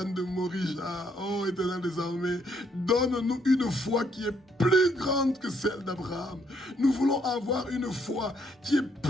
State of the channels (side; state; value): both; normal; correlation 0.71